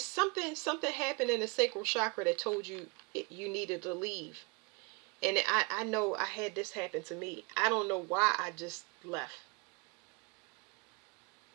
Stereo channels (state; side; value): quieter; left; 29.3 dB